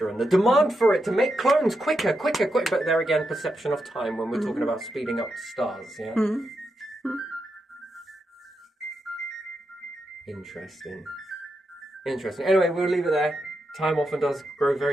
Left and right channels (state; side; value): normal; both; correlation 0.85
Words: and the demand for it to make clones quicker. But there again, perception of time when we're talking about speeding up stars, yeah? Interesting. Anyway, we'll leave it there. Time often does grow